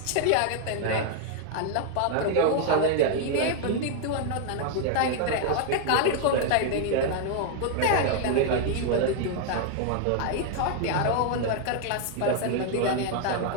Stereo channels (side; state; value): both; different; correlation 0.00